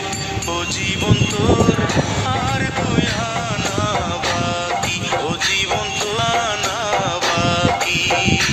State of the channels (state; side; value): identical; both; correlation 1.00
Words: ও জীবন তোর আর তুই আনা বাকি ও জীবন তো আনা বাকি